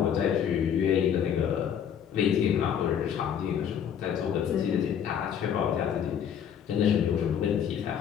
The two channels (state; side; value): quieter; right; 8.6 dB